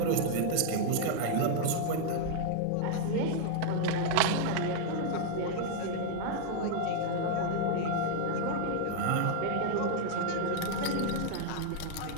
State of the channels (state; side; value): different; both; correlation -0.01